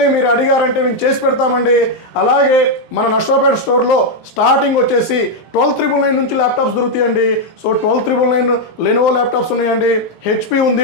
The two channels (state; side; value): late; right; 17 ms